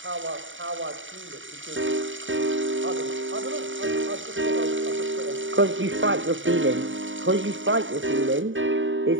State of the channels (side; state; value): left; late; 0.56 ms